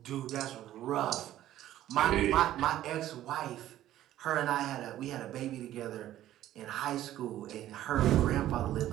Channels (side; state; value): left; quieter; 13.3 dB